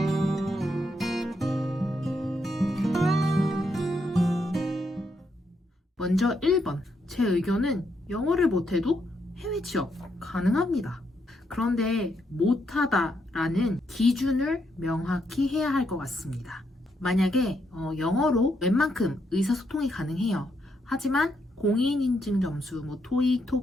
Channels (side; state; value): both; normal; correlation 0.78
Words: 먼저 1번. 제 의견은 영어를 못해도 해외 취업 가능합니다. 그런데 못하다라는 기준을 명확히 해야 할 것 같습니다. 만약에 영어로 웬만큼 의사소통이 가능해요. 하지만 공인인증 점수, 토익,